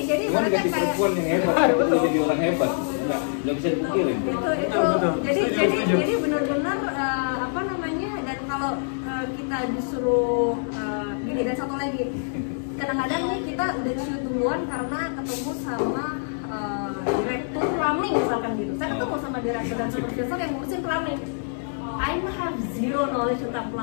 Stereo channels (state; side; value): silent; right; digital silence